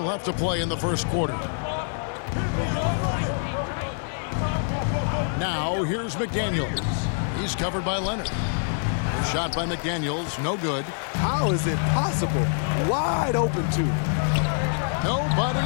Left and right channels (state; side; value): silent; right; digital silence